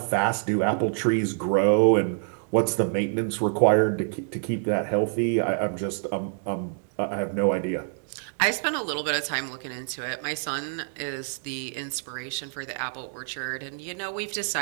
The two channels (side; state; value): left; silent; digital silence